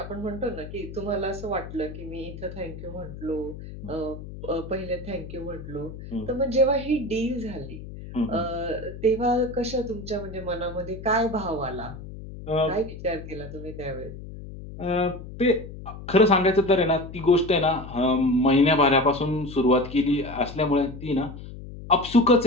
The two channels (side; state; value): left; noise; hum, 12 dB below the sound